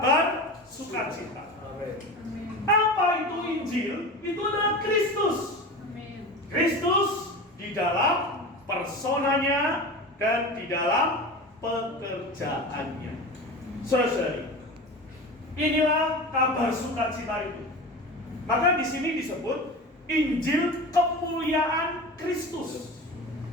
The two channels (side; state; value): both; normal; correlation 0.30